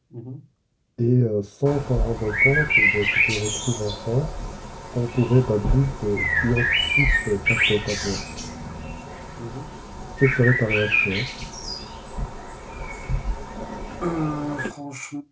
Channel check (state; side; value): identical; both; correlation 1.00